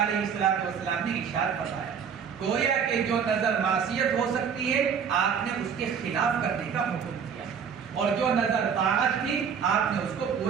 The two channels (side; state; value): left; quieter; 7.0 dB